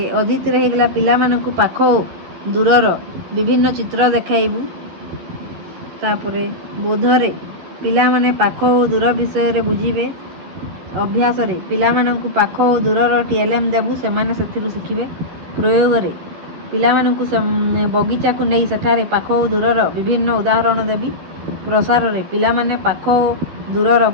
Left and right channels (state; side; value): late; left; 11 ms